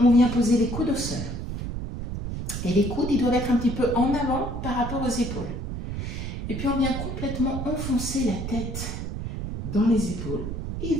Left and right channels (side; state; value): right; noise; rumble, 5 dB below the sound